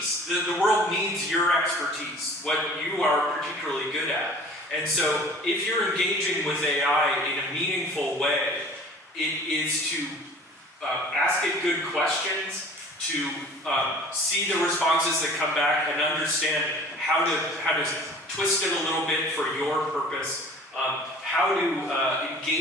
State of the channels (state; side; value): normal; both; correlation 0.46